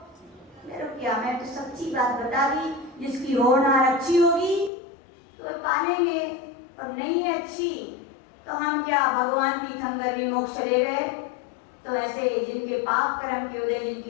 मेरे क्या, मैं तो सच्ची बात बता दी, जिसकी होनहार अच्छी होगी तो पालेंगे, और नहीं है अच्छी तो हम क्या भगवान तीर्थंकर भी मोक्ष ले गए? तो ऐसे जिनके पाप कर्म के उदय,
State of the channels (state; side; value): drops out; right; at 4.7 s